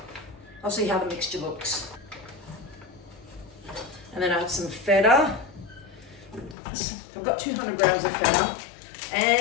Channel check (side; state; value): right; drops out; at 6.6 s